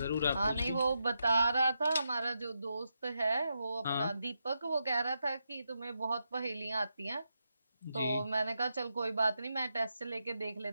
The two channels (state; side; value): inverted; both; correlation -0.85